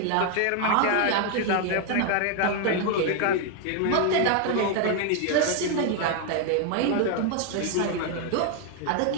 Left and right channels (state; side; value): different; both; correlation 0.01